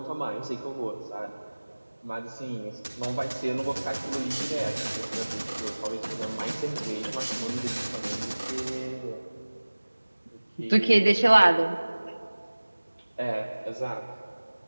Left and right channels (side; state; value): both; inverted; correlation -1.00